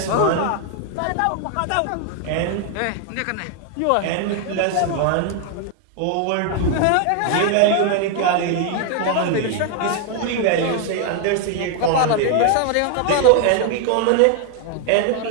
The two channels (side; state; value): both; different; correlation 0.00